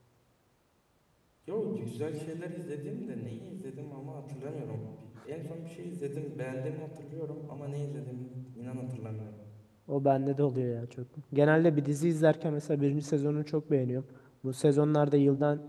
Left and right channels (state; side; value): identical; both; correlation 1.00